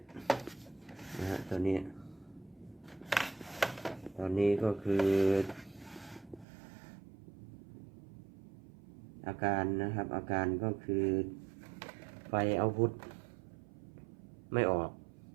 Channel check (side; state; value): left; drops out; at 6.5 s